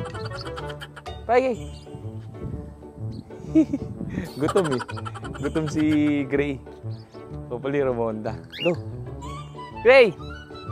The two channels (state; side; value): identical; both; correlation 1.00